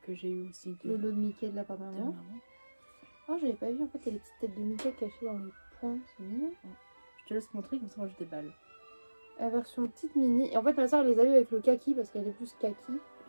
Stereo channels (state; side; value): inverted; both; correlation -1.00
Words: que j'ai eu aussi Le lot de Mickey de la part de maman. Oh, j'avais pas vu en fait, il y a les petites têtes de Mickey cachées dans les points, c'est mignon. Je te laisse montrer comme ça, moi je déballe. La version petite mini. Et en fait, ma soeur les a eu avec le kaki parce qu'elle est plus kaki.